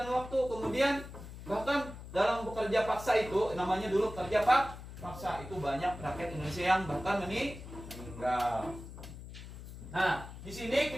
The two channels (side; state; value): left; noise; hum, 13 dB below the sound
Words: waktu. Kemudian bahkan dalam bekerja paksa itu, namanya dulu kerja paksa, itu banyak rakyat Indonesia yang bahkan meninggal. Nah, di sini